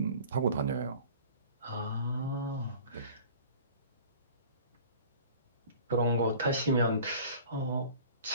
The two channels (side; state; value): both; inverted; correlation -0.44